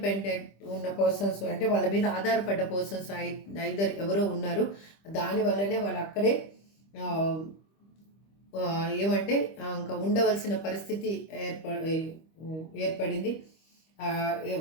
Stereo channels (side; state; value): right; late; 25 ms